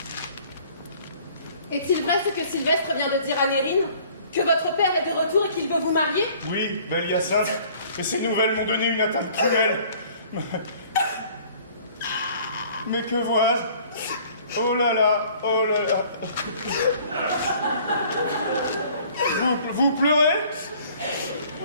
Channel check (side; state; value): both; inverted; correlation -0.54